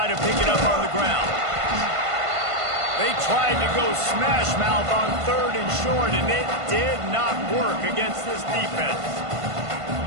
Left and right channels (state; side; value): late; left; 1.5 ms